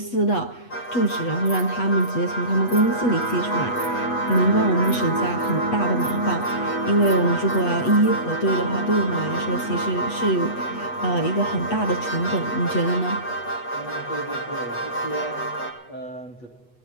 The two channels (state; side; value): late; right; 8.2 ms